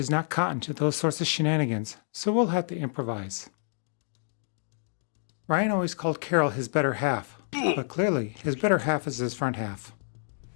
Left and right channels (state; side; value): silent; right; digital silence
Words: not cotton to those sorts of shenanigans, so we'll have to improvise. Ryan always called Carol his better half, but clearly his better half is his front half.